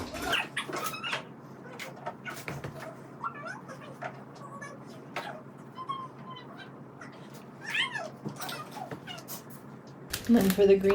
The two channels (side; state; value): both; identical; correlation 1.00